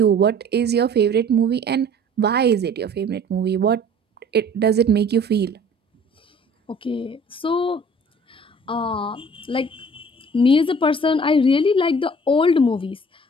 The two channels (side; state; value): both; normal; correlation 0.50